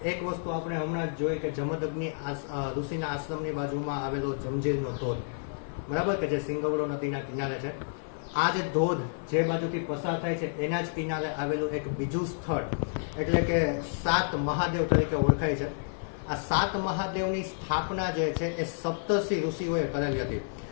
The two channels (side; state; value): right; silent; digital silence